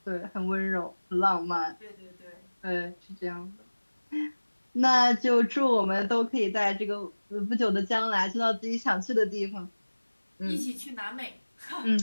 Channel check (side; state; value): both; inverted; correlation -1.00